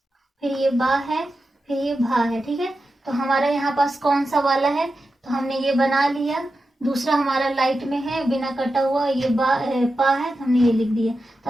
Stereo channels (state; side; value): normal; both; correlation 0.91